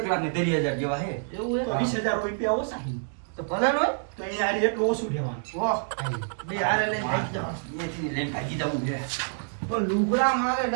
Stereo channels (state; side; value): silent; left; digital silence